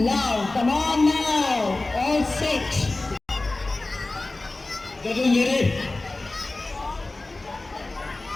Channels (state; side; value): quieter; right; 3.1 dB